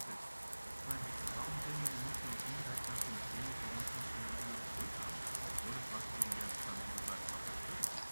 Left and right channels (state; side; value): inverted; both; correlation -1.00